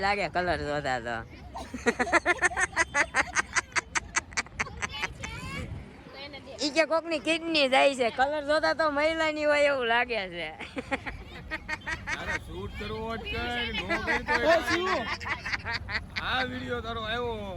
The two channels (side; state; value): both; identical; correlation 1.00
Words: લાગે કલર જોતા તો ઈ કે કોકની કિડની જાય છે કલર જોતા તો મહિલાની હોય એવું લાગે છે તારે શૂટ કરવો હોય કર નો કરી તો આ વિડિયો તારો